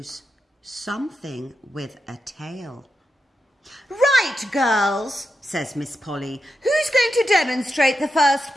Something with a tail. Right, girls, says Miss Polly. Who's going to demonstrate the first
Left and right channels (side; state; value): both; normal; correlation 0.87